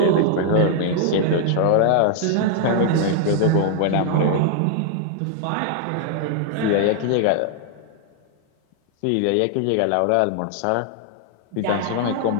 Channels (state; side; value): different; both; correlation 0.00